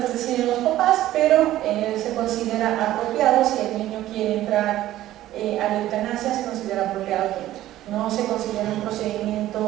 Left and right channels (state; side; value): quieter; left; 14.2 dB